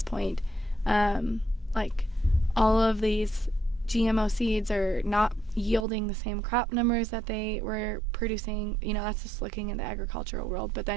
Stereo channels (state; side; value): drops out; left; at 5.9 s